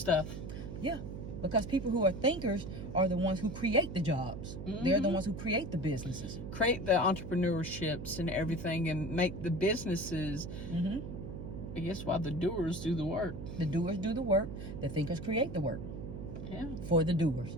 Yeah. Because people who are thinkers are the ones who create the jobs. They're the ones who create the businesses. Create the entrepreneurships and everything and make the businesses. I guess while the doers do the work. The doers do the work. The thinkers create the work. Yeah. For the doers.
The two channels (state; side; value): noise; right; hum, 8 dB below the sound